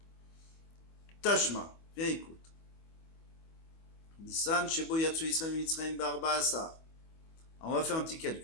Tashma, viens écoute. Nissan, Shebo Yatsu Israël Mitzrayim Barba Asar. On va faire un petit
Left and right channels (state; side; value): late; right; 25 ms